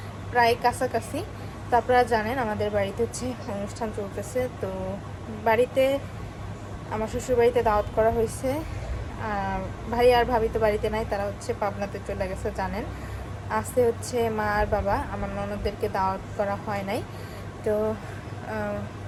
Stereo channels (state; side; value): identical; both; correlation 1.00